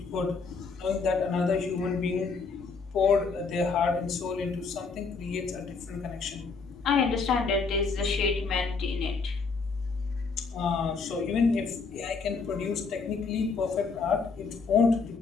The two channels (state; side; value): quieter; right; 4.7 dB